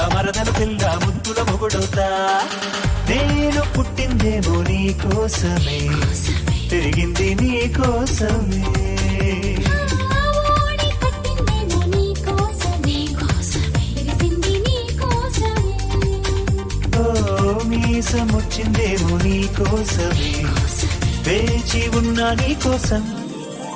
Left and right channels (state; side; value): identical; both; correlation 1.00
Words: పిల్ల ముద్దుల మొగుడవుతా నేను పుట్టిందేమో నీ కోసమే తిరిగింది నీ కోసమే ఓడి కట్టిందేమో నీ కోసమే తెలిసింది నీ కోసమే ఓ మీసమొచ్చిందేమో నీ కోసమే వేచి ఉన్నా నీ కోసం